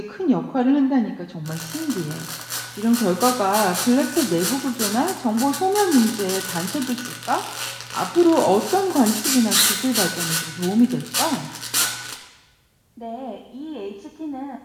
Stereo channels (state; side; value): identical; both; correlation 1.00